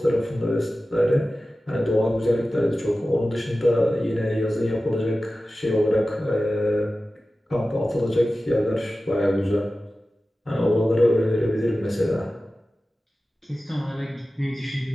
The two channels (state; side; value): normal; both; correlation 0.95